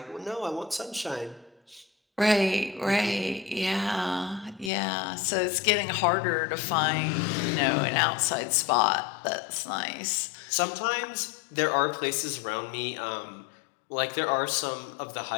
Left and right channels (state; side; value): drops out; right; at 4.7 s